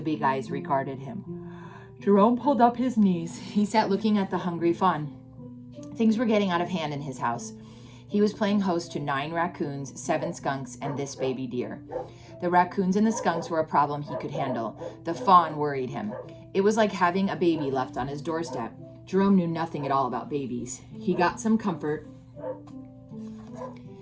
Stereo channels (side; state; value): both; identical; correlation 1.00